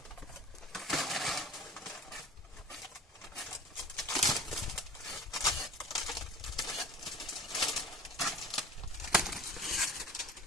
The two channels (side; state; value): both; normal; correlation 0.42